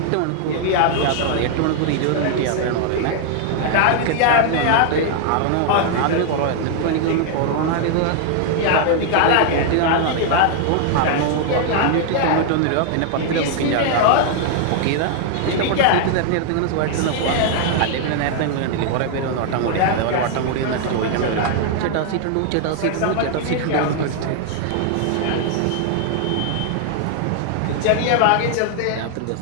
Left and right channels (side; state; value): both; different; correlation 0.00